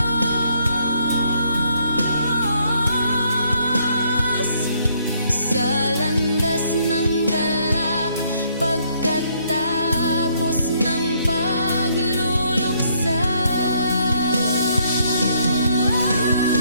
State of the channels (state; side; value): inverted; both; correlation -0.68